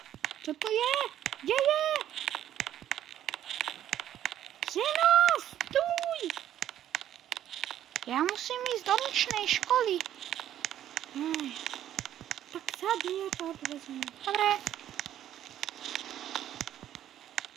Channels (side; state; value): left; quieter; 11.4 dB